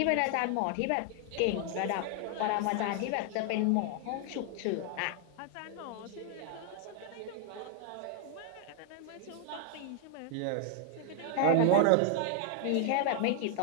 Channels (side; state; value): both; different; correlation 0.00